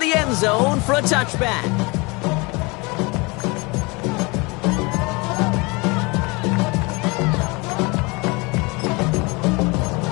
the end zone for a touchback.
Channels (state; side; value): quieter; right; 26.9 dB